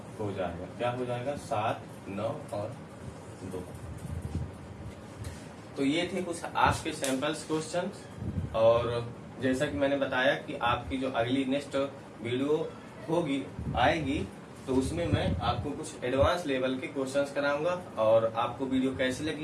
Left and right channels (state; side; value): identical; both; correlation 1.00